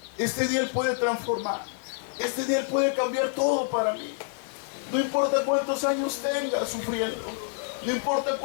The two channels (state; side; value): silent; right; digital silence